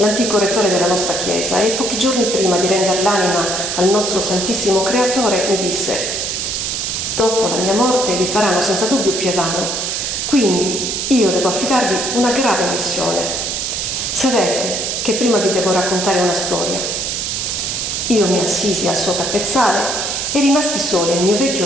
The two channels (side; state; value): right; noise; hiss, 2 dB below the sound